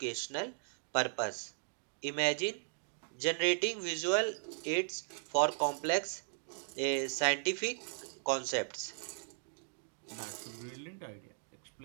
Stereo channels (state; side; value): silent; left; digital silence